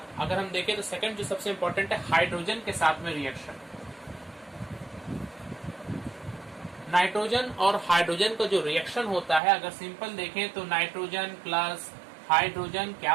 अगर हम देखें तो सेकंड जो सबसे इंपॉर्टेंट है हाइड्रोजन के साथ में रिएक्शन। नाइट्रोजन और हाइड्रोजन का जो रिएक्शन होता है, अगर सिंपल देखें तो नाइट्रोजन प्लस हाइड्रोजन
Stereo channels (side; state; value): left; drops out; at 9.4 s